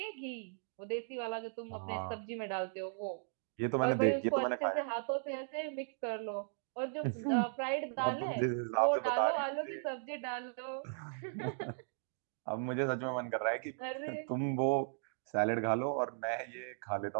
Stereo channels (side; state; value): left; silent; digital silence